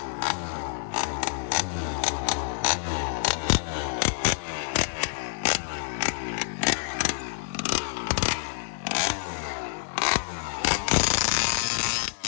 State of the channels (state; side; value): silent; right; digital silence